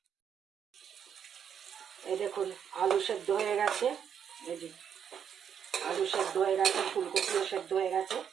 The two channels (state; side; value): quieter; left; 8.1 dB